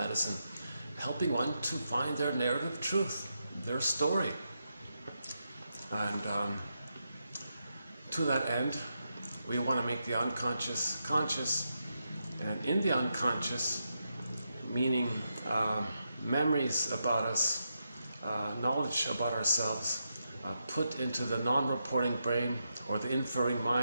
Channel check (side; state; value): both; inverted; correlation -0.84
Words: helping one to find their narrative truth, their story. And to that end, we want to make the unconscious conscious, and in the unconscious, meaning memories about us, knowledge about ourselves, put into the non-reporting brain or the inferring